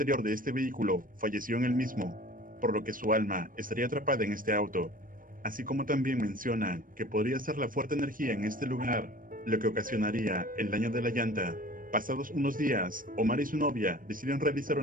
de este vehículo falleció en el mismo, por lo que su alma estaría atrapada en este auto. Así como también mencionan que podría ser la fuerte energía en este lugar lo que ocasionaría el daño de la llanta. Pasados unos días, Omar y su novia deciden realizar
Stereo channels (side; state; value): left; late; 0.40 ms